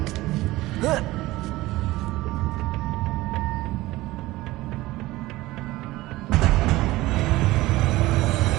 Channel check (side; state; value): left; quieter; 18.3 dB